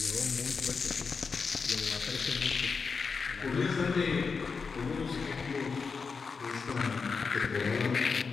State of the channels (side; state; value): right; quieter; 5.1 dB